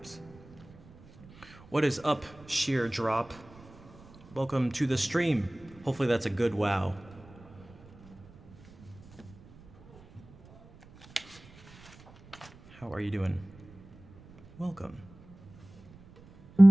What is up, Sheer Drop? Welcome to the stream. Hopefully that's a good wow. How are you doing? Welcome.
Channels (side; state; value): right; noise; rumble, 23 dB below the sound